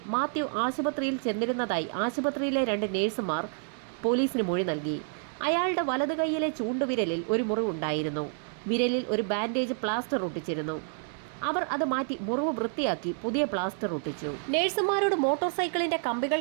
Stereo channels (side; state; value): left; silent; 59 dB below the other